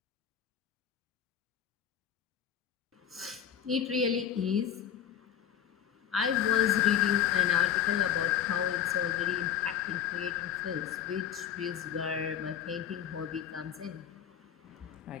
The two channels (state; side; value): quieter; right; 9.5 dB